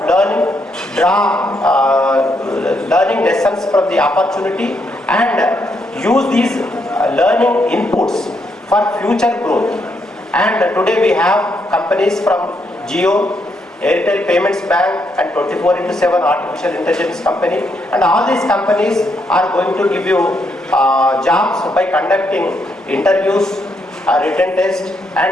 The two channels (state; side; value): normal; both; correlation 0.77